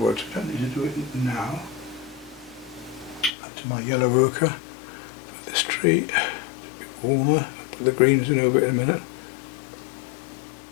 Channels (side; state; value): right; drops out; at 3.3 s